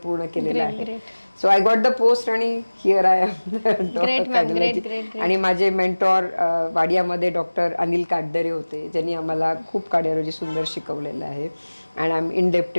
केलेलं आहे. So I got the post आणि हिअर आय एम कार्डिओलॉजी. आणि माझे मेंटॉर वाडियामध्ये डॉक्टर अनिल काटदरे होते, ज्यांनी आम्हाला खूप कार्डिओलॉजी सुंदर शिकवलेलं आहे. And I am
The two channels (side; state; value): both; inverted; correlation -1.00